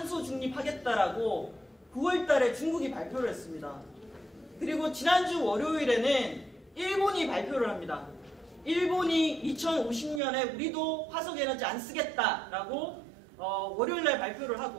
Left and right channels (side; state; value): left; drops out; at 10.2 s